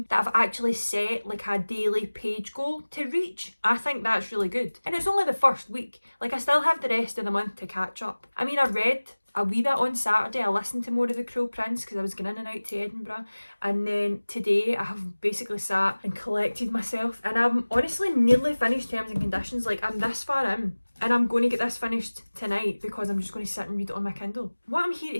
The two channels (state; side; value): inverted; both; correlation -1.00